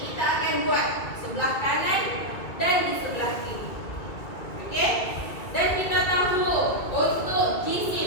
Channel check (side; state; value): right; late; 2.4 ms